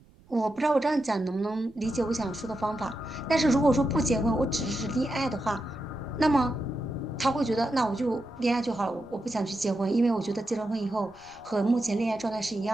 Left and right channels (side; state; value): right; noise; rumble, 27 dB below the sound